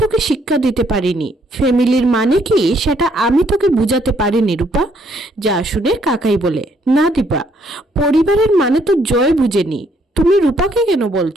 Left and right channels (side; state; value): both; normal; correlation 0.68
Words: তোকে শিক্ষা দিতে পারিনি, ফ্যামিলির মানে কি সেটা আমি তোকে বুঝাতে পারিনি রূপা। যা শুনে কাকাই বলে, না দীপা, পরিবারের মানে তো জয় বুঝেনি, তুমি রূপাকে কেন